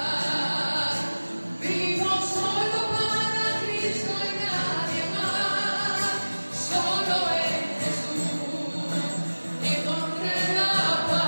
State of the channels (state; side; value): inverted; both; correlation -1.00